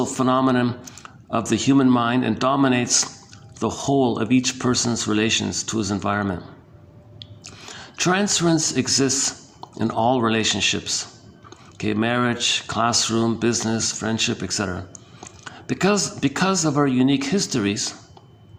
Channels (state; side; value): identical; both; correlation 1.00